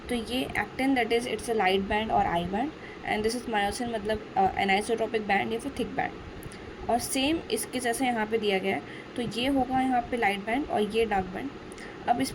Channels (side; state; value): both; identical; correlation 1.00